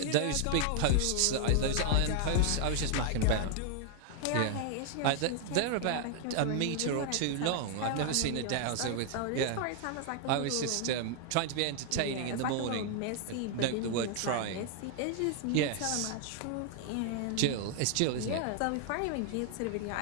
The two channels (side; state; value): both; different; correlation 0.00